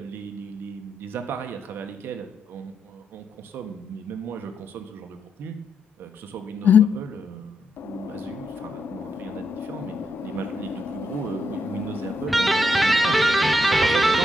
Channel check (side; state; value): both; normal; correlation 0.80